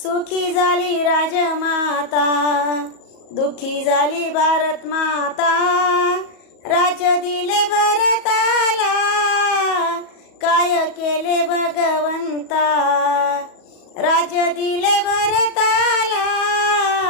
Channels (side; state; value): right; late; 38 ms